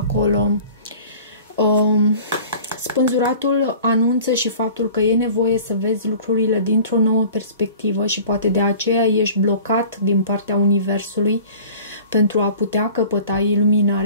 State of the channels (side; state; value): both; inverted; correlation -0.45